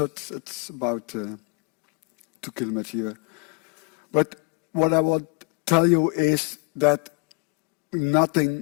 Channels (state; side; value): quieter; right; 32.0 dB